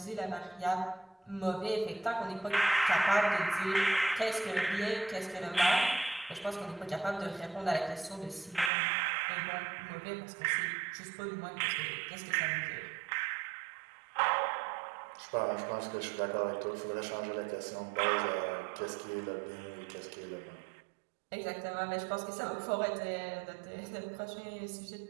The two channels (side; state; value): left; drops out; at 8.7 s